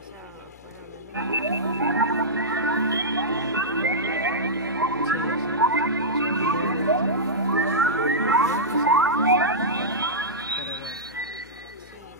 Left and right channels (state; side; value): noise; left; hum, 25 dB below the sound